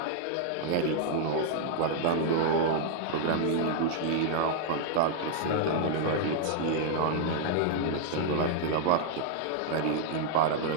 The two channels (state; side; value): different; both; correlation -0.01